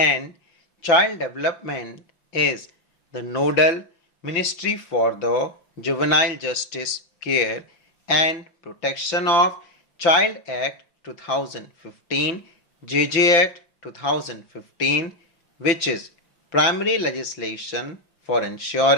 Child Development is the nodal ministry for the Juvenile Justice Care and Protection of Child Act 2015, JJ Act 2015, which is primary legislation for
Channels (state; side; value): late; right; 5.9 ms